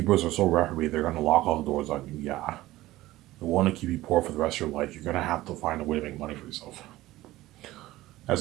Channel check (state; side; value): quieter; left; 16.9 dB